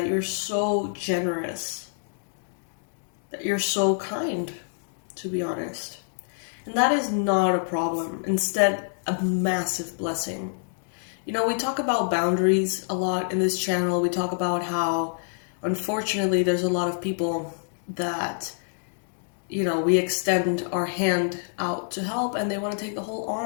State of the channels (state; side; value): silent; right; digital silence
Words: you're so generous, that you're so kind, to be honest. And that is not a problem. Instead, a massive blessing. We talk about boundaries a lot in this channel. We talk about how, unfortunately, there's a lot of people that, we extend our hand out to help and they want to take the whole